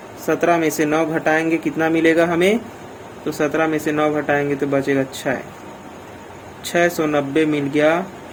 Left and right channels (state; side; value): identical; both; correlation 1.00